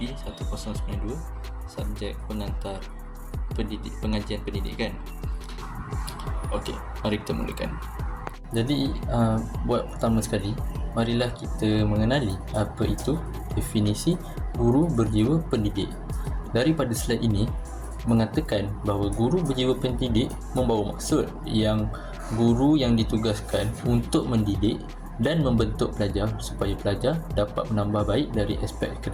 1092, subjek pengantar pengajian pendidikan. Okey, mari kita mulakan. Jadi, buat pertama sekali, marilah kita mengenali apa itu definisi guru berjiwa pendidik. Daripada slide ini mengatakan bahawa guru berjiwa pendidik membawa maksud yang guru yang ditugaskan untuk mendidik dan membentuk pelajar supaya pelajar dapat menambah baik dari aspek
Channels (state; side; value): identical; both; correlation 1.00